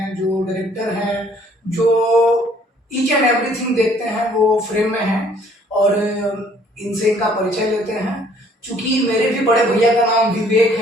जो डायरेक्टर हैं, जो ईच एंड एवरीथिंग देखते हैं वो फ्रेम में हैं। और इनसे इनका परिचय लेते हैं। चूंकि मेरे भी बड़े भैया का नाम विवेक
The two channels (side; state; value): both; normal; correlation 0.60